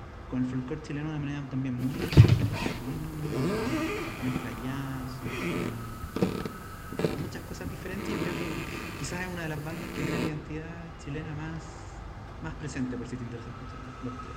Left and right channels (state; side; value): identical; both; correlation 1.00